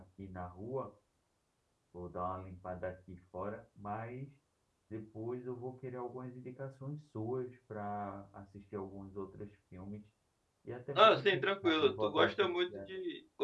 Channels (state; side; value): identical; both; correlation 1.00